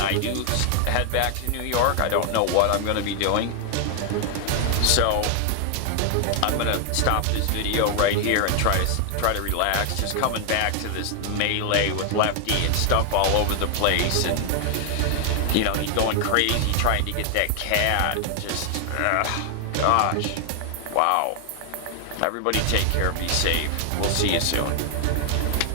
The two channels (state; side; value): different; both; correlation 0.00